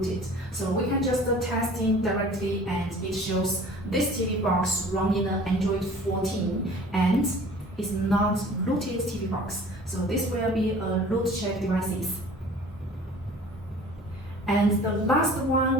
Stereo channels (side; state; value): both; normal; correlation 0.47